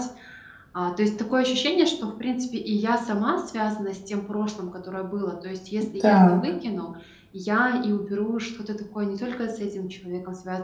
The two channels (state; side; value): identical; both; correlation 1.00